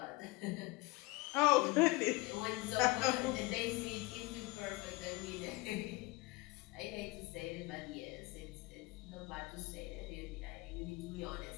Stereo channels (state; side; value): quieter; right; 22.7 dB